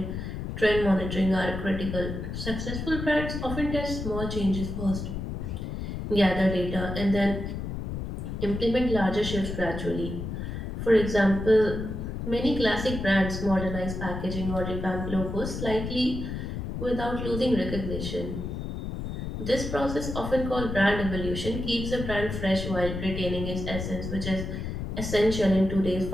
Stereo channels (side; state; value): left; noise; rumble, 5 dB below the sound